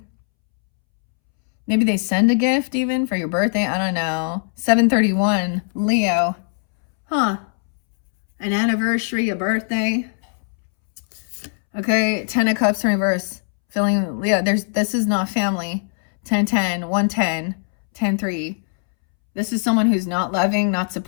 Maybe they send a gift even for your birthday. I don't know. 731, Leo. Huh. An anniversary, a birthday. Okay, 10 of Cups in reverse. Feeling, Leo, this is not family. 10-10, 110, 10-3. This is someone who's not loving, not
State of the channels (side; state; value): right; silent; 66 dB below the other